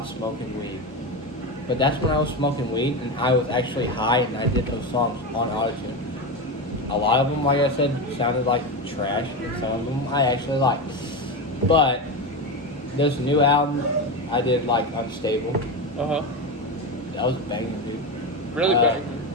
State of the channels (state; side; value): normal; both; correlation 0.18